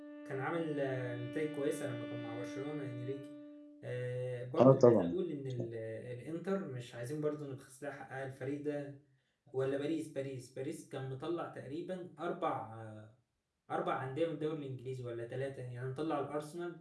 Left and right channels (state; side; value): identical; both; correlation 1.00